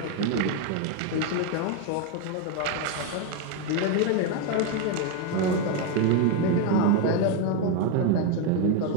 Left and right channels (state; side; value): different; both; correlation 0.01